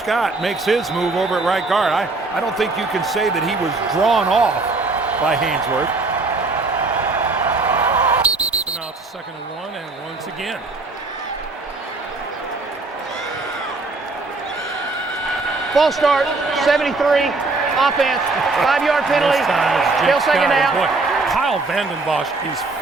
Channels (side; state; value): left; quieter; 3.5 dB